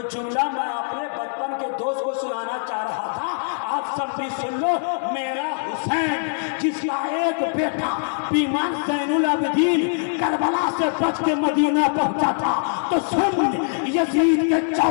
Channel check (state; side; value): silent; right; 57 dB below the other